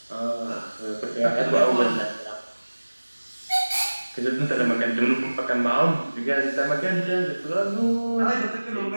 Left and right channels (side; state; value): both; inverted; correlation -1.00